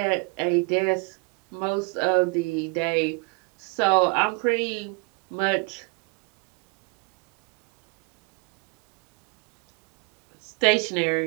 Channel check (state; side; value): quieter; left; 30.9 dB